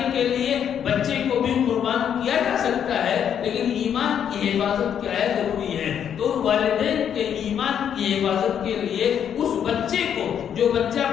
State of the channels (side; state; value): right; quieter; 8.8 dB